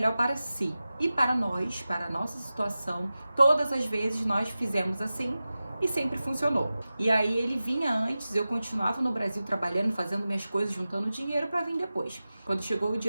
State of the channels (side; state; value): both; inverted; correlation -0.95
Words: para si. E para nós, para a nossa situação, todas as vezes nós fizemos assim e sempre funcionou. E aí ele vinha antes, eu continuava no Brasil trabalhando, fazendo minhas coisas, juntando dinheiro para vir depois. Quando chegou o